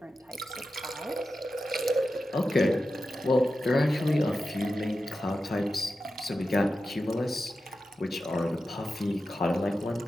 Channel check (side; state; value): both; normal; correlation 0.91